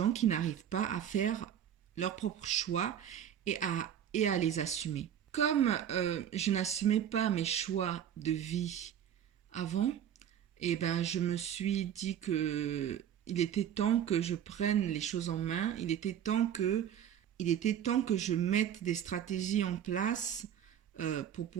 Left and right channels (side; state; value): left; quieter; 9.7 dB